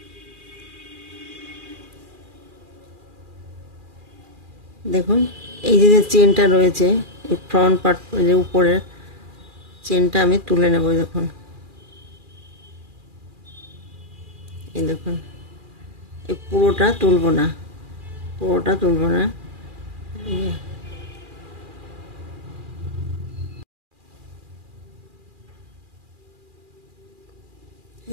দেখুন এই যে চেনটা রয়েছে, এই ফ্রন্ট পার্ট যে উপরের চেনটা আমি তুলে নেব। দেখুন এই দেখুন, এই পুরোটা তুলব না, পুরোটা তুলব না।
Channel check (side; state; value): left; late; 2.4 ms